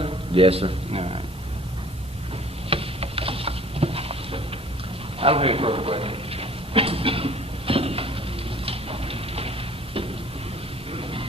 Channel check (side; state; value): both; normal; correlation 0.52